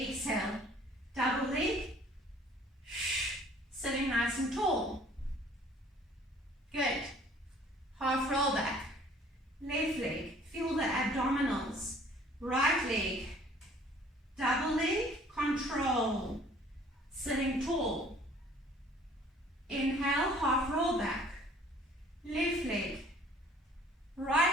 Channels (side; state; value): both; normal; correlation 0.54